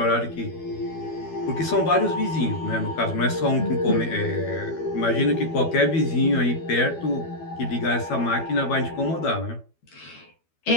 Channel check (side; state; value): right; late; 12 ms